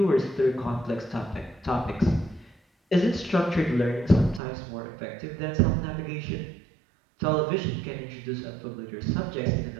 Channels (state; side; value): drops out; left; at 4.4 s